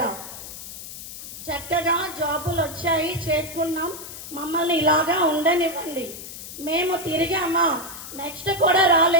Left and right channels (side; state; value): left; noise; hiss, 12 dB below the sound